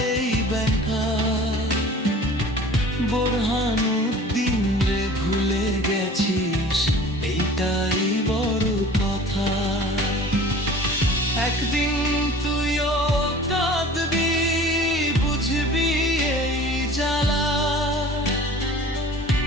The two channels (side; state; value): both; normal; correlation 0.44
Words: এই ব্যথা। বোরহানুদ্দিন রে ভুলে গেছিস, এইটাই বড় কথা। একদিন তুইও কাঁদবি, বুঝবি এই জ্বালা।